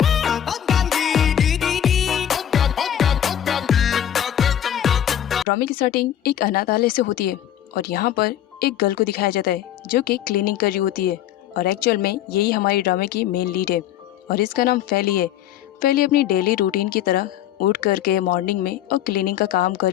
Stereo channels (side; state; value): right; quieter; 10.8 dB